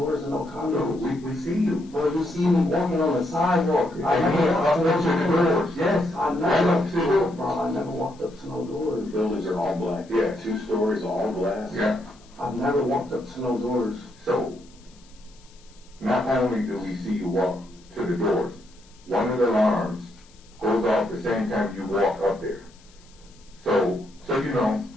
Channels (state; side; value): noise; left; hiss, 28 dB below the sound